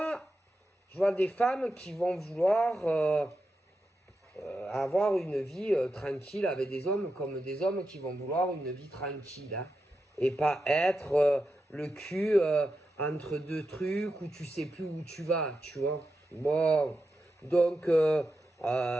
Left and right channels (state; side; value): normal; both; correlation 0.88